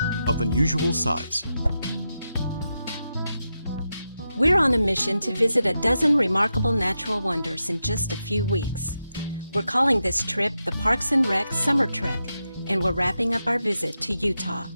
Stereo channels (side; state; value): both; inverted; correlation -0.88